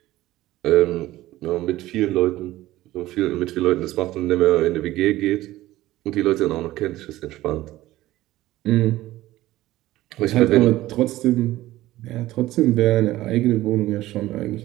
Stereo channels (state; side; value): quieter; left; 16.2 dB